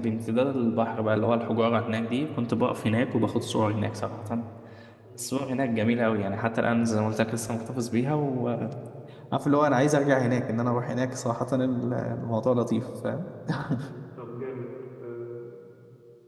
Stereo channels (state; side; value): identical; both; correlation 1.00